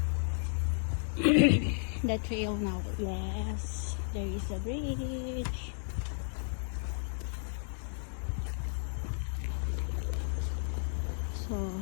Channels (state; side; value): silent; right; digital silence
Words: the trail now. Yes, there is a bridge. So